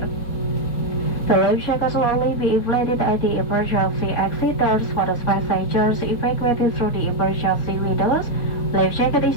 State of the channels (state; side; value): late; right; 4.6 ms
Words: The life jacket will only be inflated at the emergency exit doors for the passengers evacuated through the emergency windows. Life jacket